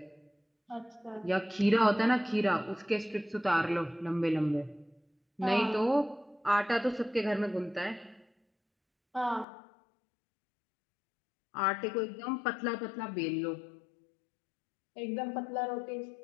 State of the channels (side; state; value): right; drops out; at 9.5 s